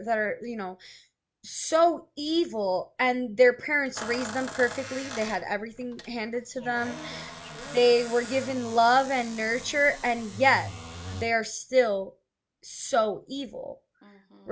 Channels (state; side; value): identical; both; correlation 1.00